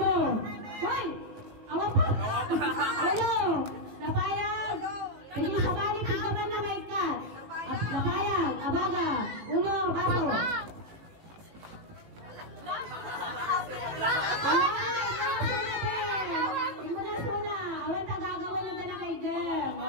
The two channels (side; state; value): left; late; 18 ms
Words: Hoy! Awan pa! Uno. Lapayag. Hindi sa bali, tigaman na may kat. Lapayag. Abaga. Uno. Baso.